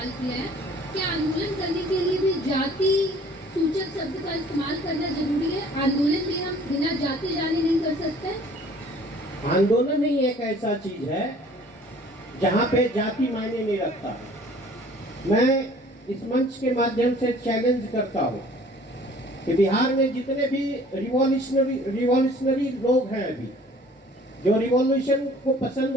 किया है। क्या आंदोलन करने के लिए भी जाति सूचक शब्द का इस्तेमाल करना जरूरी है? आंदोलन में हम बिना जाति जाने नहीं कर सकते? आंदोलन ही एक ऐसा चीज है जहाँ पे जाति मायने नहीं रखता। मैं इस मंच के माध्यम से चैलेंज करता हूँ कि बिहार में जितने भी रिवॉल्यूशनरी लोग हैं, अभी जो रिवॉल्यूशन को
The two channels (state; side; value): normal; both; correlation 0.52